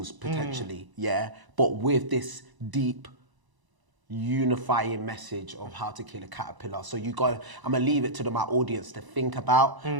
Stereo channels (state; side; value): late; left; 1.0 ms